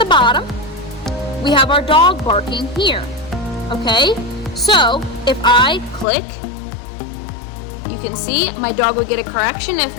bottom. We have our dog barking here. Okay? So if I click, you can see my dog would get a correction. If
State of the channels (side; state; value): right; drops out; at 6.1 s